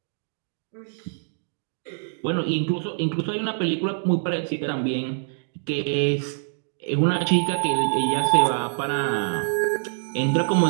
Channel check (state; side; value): silent; left; digital silence